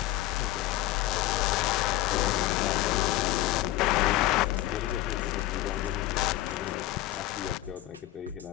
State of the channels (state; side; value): quieter; right; 15.7 dB